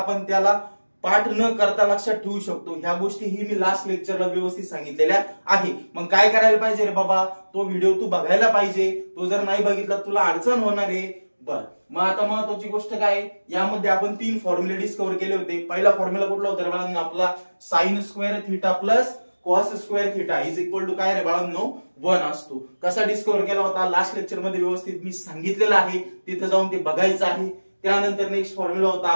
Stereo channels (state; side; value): inverted; both; correlation -1.00